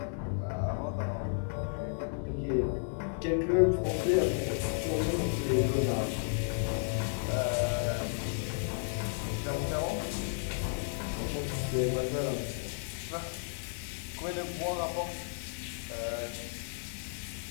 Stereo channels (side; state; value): right; silent; 56 dB below the other